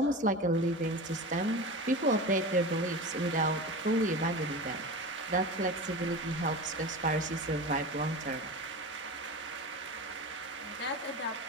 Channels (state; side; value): normal; both; correlation 0.28